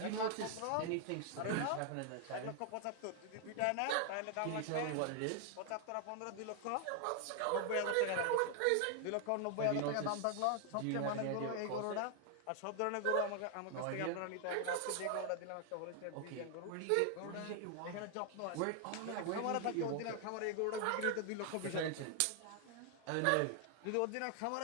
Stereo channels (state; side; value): different; both; correlation 0.00